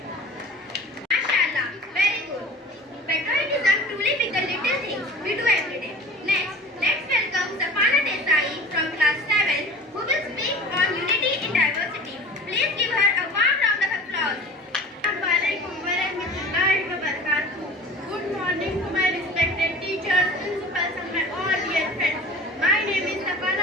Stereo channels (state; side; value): normal; both; correlation 0.39